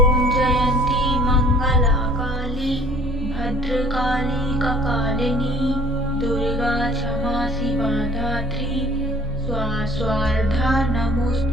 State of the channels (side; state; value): both; normal; correlation 0.53